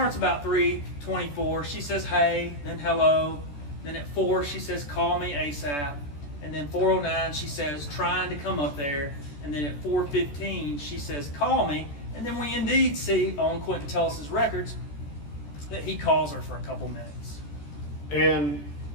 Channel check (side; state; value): right; late; 14 ms